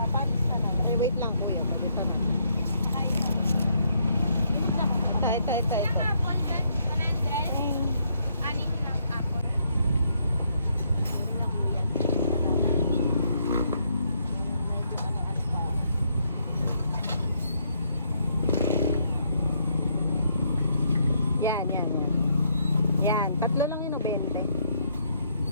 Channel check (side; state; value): both; inverted; correlation -0.72